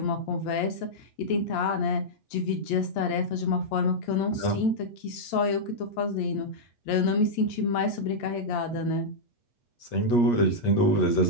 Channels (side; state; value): right; late; 8.7 ms